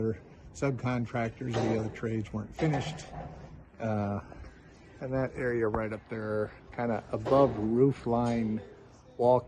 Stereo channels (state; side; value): identical; both; correlation 1.00